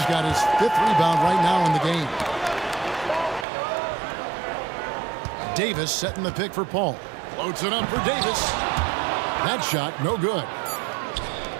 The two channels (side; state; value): left; drops out; at 3.5 s